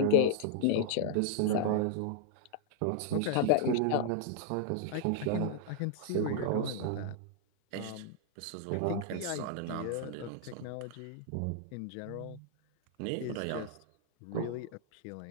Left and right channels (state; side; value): different; both; correlation -0.01